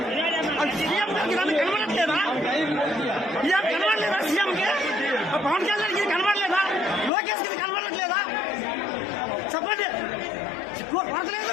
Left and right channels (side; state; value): right; drops out; at 7.1 s